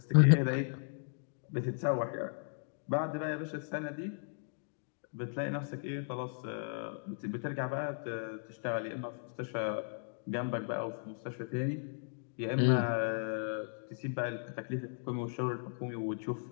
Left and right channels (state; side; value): silent; right; digital silence